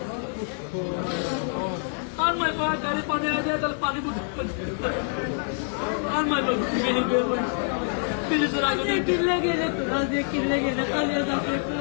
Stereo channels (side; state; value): right; silent; 56 dB below the other